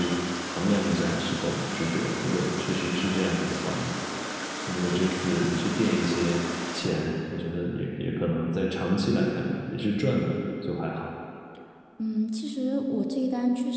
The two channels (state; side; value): identical; both; correlation 1.00